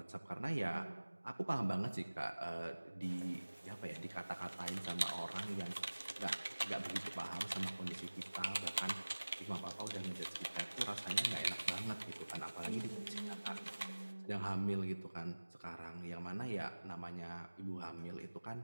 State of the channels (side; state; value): both; inverted; correlation -1.00